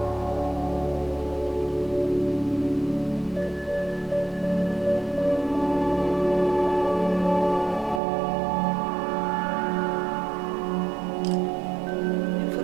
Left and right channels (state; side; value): drops out; left; at 8.0 s